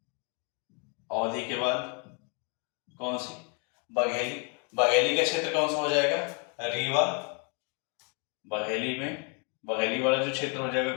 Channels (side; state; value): right; quieter; 36.4 dB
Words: अवधी के बाद कौन सी? बघेली। बघेली का क्षेत्र कौन सा हो जाएगा? रीवा। बघेली में बघेली वाला जो क्षेत्र हो जाएगा